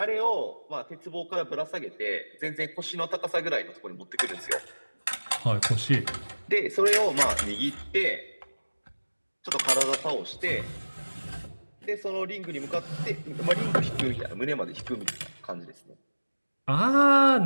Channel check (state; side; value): inverted; both; correlation -1.00